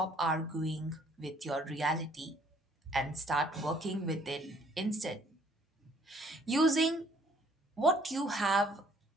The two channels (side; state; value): both; normal; correlation 0.61